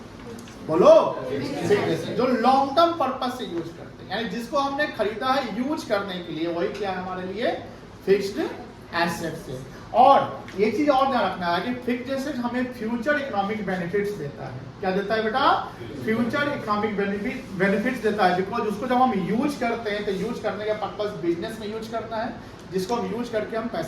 बोलो। फिक्स्ड एसेट जो लॉन्ग टर्म पर्पस से यूज करते हैं, यानी जिसको हमने खरीदा है यूज करने के लिए, वही क्या है हमारे लिए? फिक्स्ड एसेट्स है। और ये चीज और ध्यान रखना है कि फिक्स्ड एसेट हमें फ्यूचर इकोनॉमिक बेनिफिट्स देता है। क्या देता है बेटा? फ्यूचर इकोनॉमिक बेनिफिट्स देता है, बिकॉज उसको जब हम यूज करते हैं तो यूज करने का पर्पस बिजनेस में यूज करना है, जिसको हम यूज करके हम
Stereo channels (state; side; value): identical; both; correlation 1.00